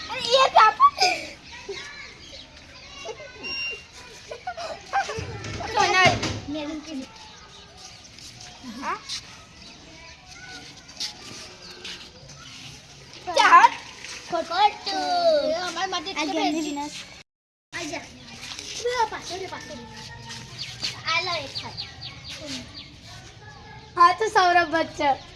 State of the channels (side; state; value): both; identical; correlation 1.00